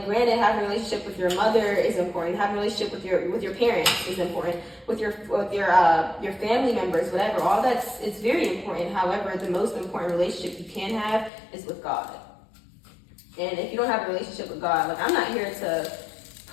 granted, having a relationship with your mother is important. Having a relationship with your parents is important. With your family members, whatever. All it's very important. However, the most important relationship you can have is with God. And if you don't have a relationship with God, like, I'm not here to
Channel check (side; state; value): right; drops out; at 11.3 s